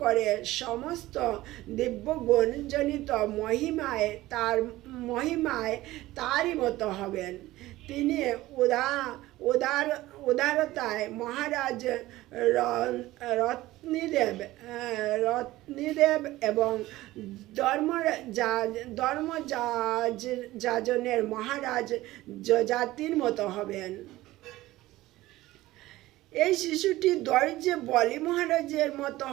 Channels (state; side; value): quieter; left; 17.2 dB